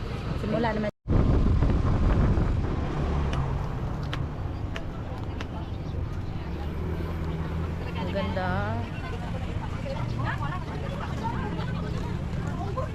Simula naman. Ang ganda.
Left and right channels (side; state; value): both; identical; correlation 1.00